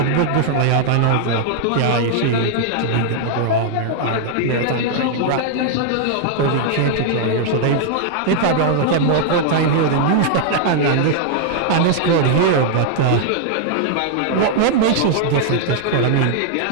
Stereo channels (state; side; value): different; both; correlation -0.01